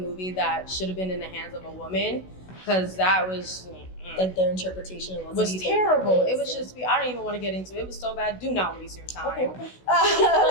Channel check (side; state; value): right; late; 16 ms